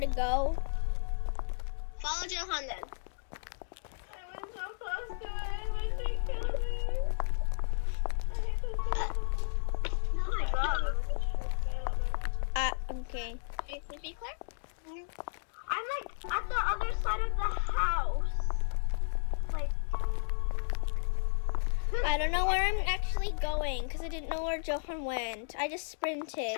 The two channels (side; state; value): right; silent; digital silence